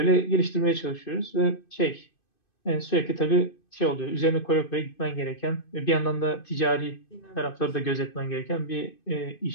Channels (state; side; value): late; right; 2.5 ms